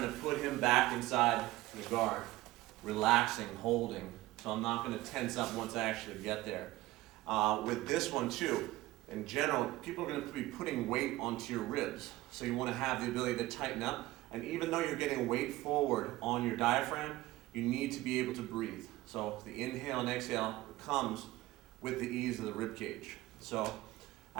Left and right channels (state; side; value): quieter; left; 18.0 dB